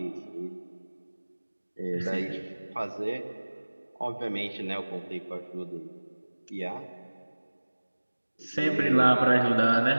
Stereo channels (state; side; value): inverted; both; correlation -1.00